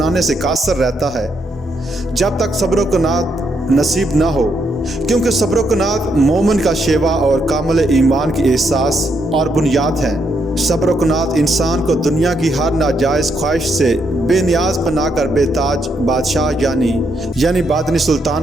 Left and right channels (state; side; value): normal; both; correlation 0.77